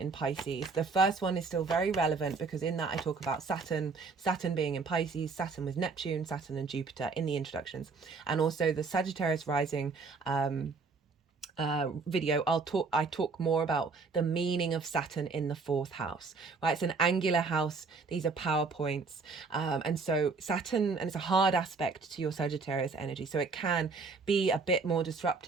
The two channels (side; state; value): left; quieter; 4.4 dB